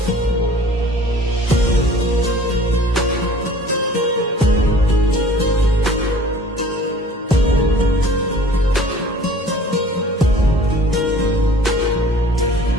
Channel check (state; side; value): normal; both; correlation 0.49